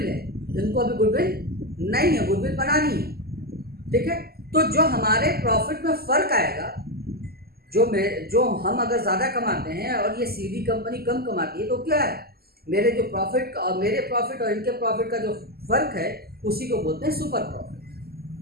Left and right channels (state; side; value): late; left; 0.45 ms